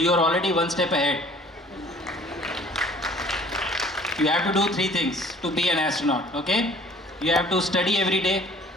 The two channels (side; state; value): both; normal; correlation 0.52